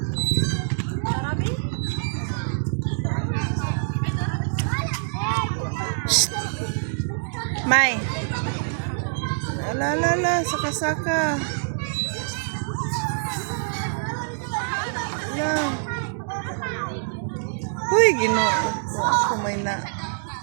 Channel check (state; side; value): silent; left; digital silence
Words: May. La saka-saka. Uy, Ginoo.